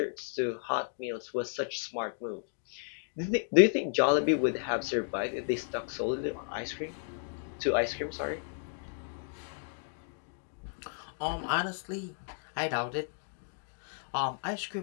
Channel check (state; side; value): silent; right; digital silence